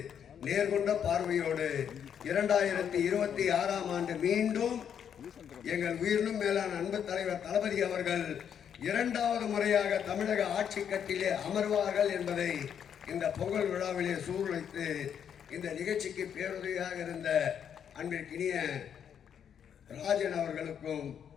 நேர்கொண்ட பார்வையோடு 2026ஆம் ஆண்டு மீண்டும் எங்கள் உயிரினும் மேலான அன்பு தலைவர் தளபதி அவர்கள் 2வது முறையாக தமிழக ஆட்சி கட்டிலே அமர்வார்கள் என்பதை இந்த பொங்கல் விழாவிலே சூழ்நிலைத்து இந்த நிகழ்ச்சிக்கு பேருதவியாக இருந்த அன்பிற்கினிய ராஜன் அவர்களுக்கும்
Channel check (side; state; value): right; quieter; 8.4 dB